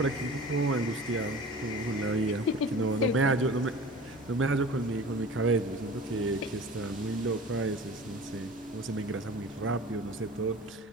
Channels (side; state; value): both; normal; correlation 0.40